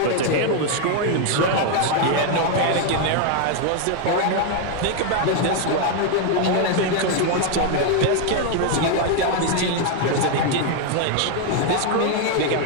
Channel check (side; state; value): both; different; correlation 0.01